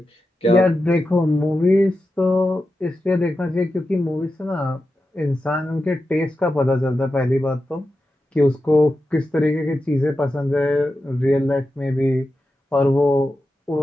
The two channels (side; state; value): both; normal; correlation 0.91